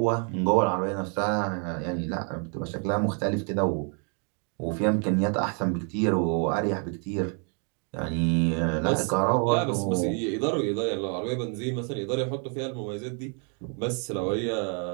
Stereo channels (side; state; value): left; quieter; 40.0 dB